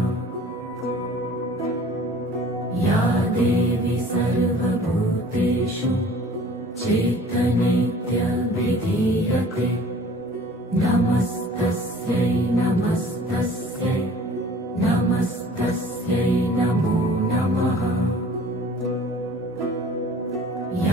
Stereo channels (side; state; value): both; normal; correlation 0.49